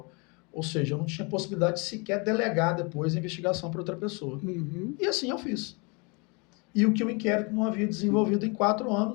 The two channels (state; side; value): quieter; right; 30.8 dB